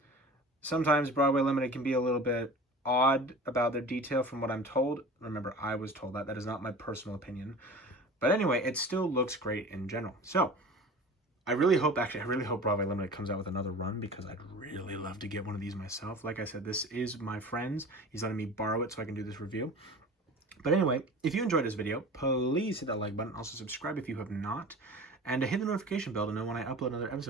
Sometimes Broadway Limited can be a little bit odd about their detail, from what I'm told. Remember, I was told that. That is not my personal opinion. But anyway, it still looks great in general. So, I really hope Broadway Limited comes out with another run, because I'd really love to get one of these myself. Like I said, this is my friend's. He's letting me borrow it so I can do this review. But anyway, if you enjoyed this video, please hit that like button. Also subscribe if you have not. and to hit the notification bell to know when I upload another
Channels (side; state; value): both; normal; correlation 0.38